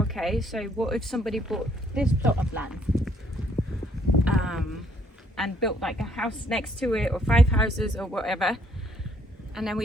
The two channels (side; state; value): both; normal; correlation 0.67